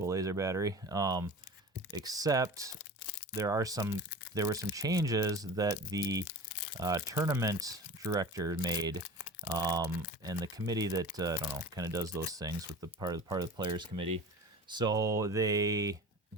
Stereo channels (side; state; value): both; normal; correlation 0.35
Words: laser battery. Except there were some changes that the tournament director made, and the committee that I don't know, kind of does those things with the part of the players committee. So they